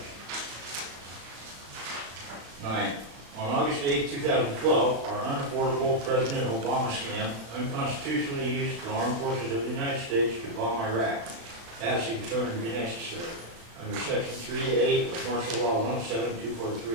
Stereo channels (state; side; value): late; left; 35 ms